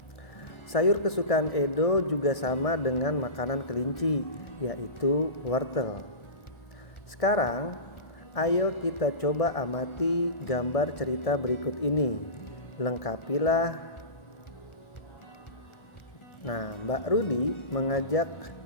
Sayur kesukaan Edo juga sama dengan makanan kelinci, yaitu wortel. Sekarang, ayo kita coba amati gambar cerita berikut ini. Lengkapilah. Nah, Mbak Rudi mengajak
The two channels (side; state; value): right; late; 1.7 ms